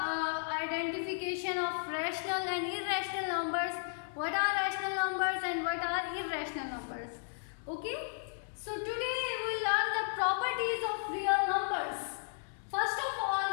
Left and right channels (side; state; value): right; silent; digital silence